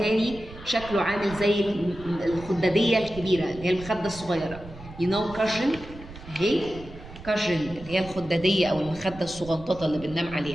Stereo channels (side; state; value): right; noise; rumble, 16 dB below the sound